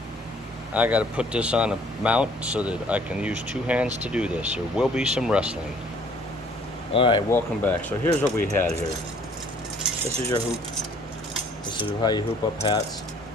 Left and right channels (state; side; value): normal; both; correlation 0.58